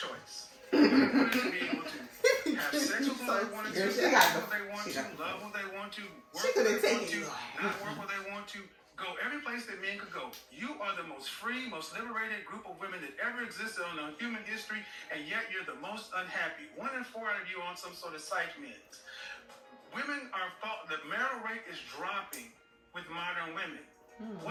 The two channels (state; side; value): identical; both; correlation 1.00